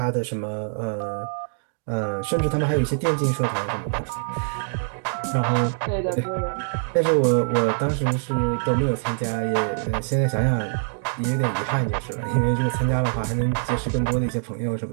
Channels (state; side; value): silent; left; digital silence